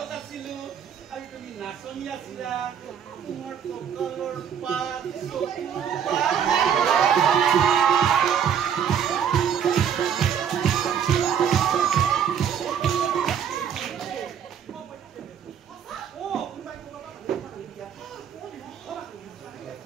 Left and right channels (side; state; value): left; quieter; 8.2 dB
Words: আছিলো আৰু তুমি নাচনি আছিলা তোমাৰ কঁকালৰ পাত